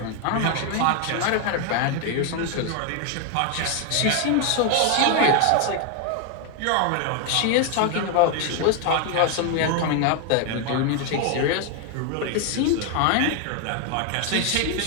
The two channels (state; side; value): different; both; correlation 0.01